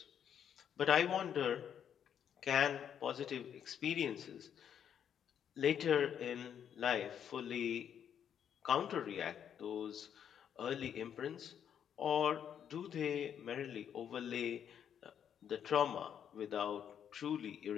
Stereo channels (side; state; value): right; quieter; 8.8 dB